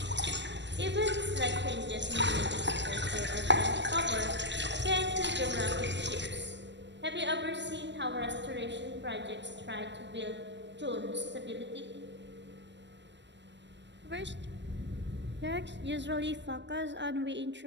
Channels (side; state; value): left; late; 0.52 ms